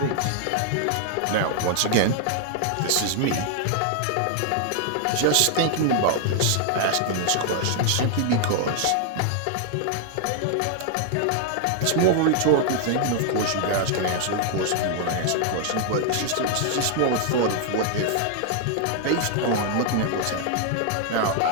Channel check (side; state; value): both; different; correlation 0.00